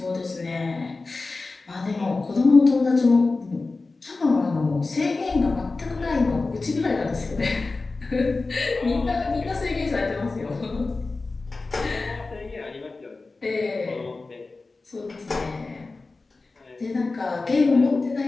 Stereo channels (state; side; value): quieter; right; 3.6 dB